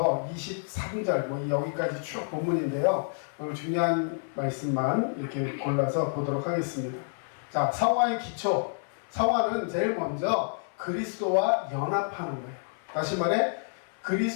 23절, 여기까지 쭉 본문인데요. 오늘 중요한 말씀만 이렇게 골라서 보도록 하겠습니다. 자, 성화의 기초. 성화는 제일 먼저 그리스도와 연합하는 거예요. 다시 말해,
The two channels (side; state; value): right; silent; 59 dB below the other